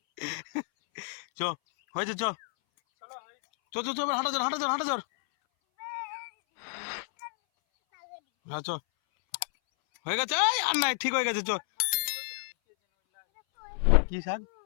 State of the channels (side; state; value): right; silent; 58 dB below the other